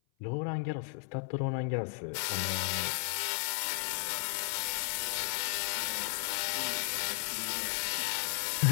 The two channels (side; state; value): right; silent; 55 dB below the other